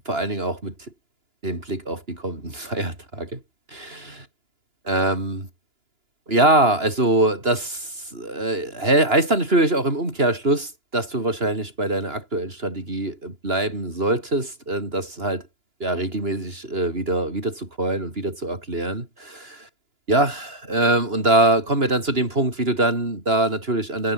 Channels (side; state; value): left; late; 2.9 ms